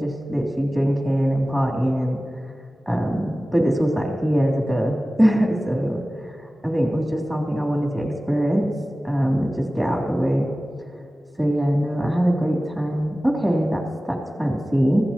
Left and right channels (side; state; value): both; normal; correlation 0.96